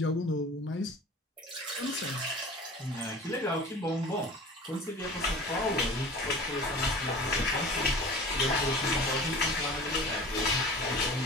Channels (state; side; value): normal; both; correlation 0.40